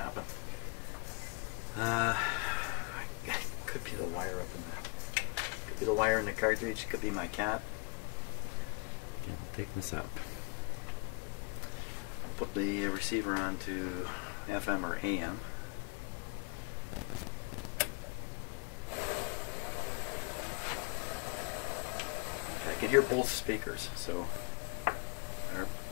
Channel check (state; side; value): quieter; right; 31.3 dB